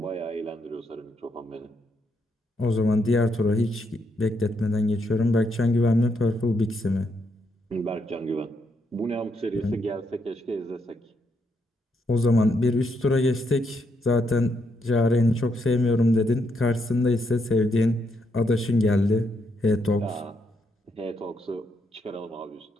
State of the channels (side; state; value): both; normal; correlation 0.77